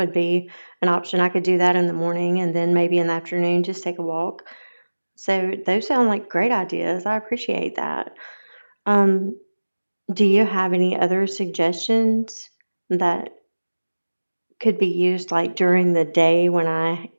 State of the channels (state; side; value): inverted; both; correlation -1.00